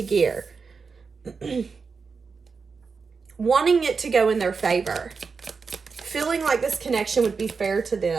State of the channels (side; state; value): left; quieter; 5.0 dB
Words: gear. Wanting it to go in their favor. Feeling like this connection would be fair to